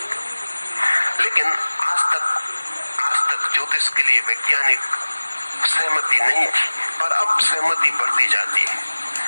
लेकिन आज तक ज्योतिष के लिए वैज्ञानिक सहमति नहीं थी, पर अब सहमति बढ़ती जाती है।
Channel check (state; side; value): inverted; both; correlation -1.00